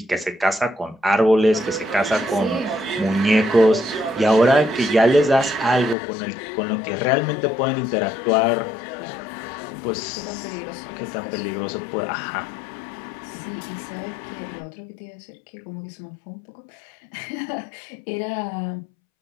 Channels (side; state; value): right; drops out; at 6.0 s